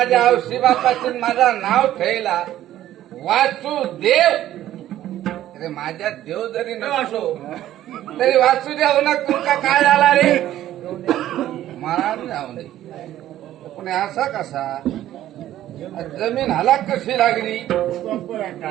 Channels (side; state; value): left; quieter; 13.0 dB